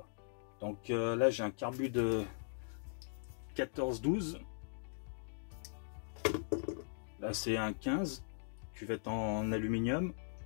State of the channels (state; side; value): silent; right; digital silence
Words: Donc là j'ai un carbu de 14-12, là c'est un 15, cuvette en aluminium.